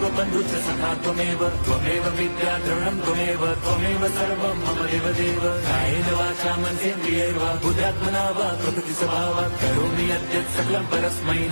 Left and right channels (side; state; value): both; inverted; correlation -1.00